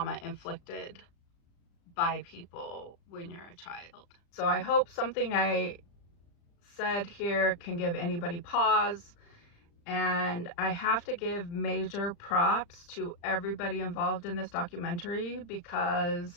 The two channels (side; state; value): right; late; 35 ms